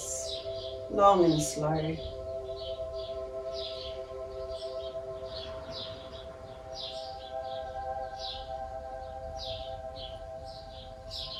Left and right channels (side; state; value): both; identical; correlation 1.00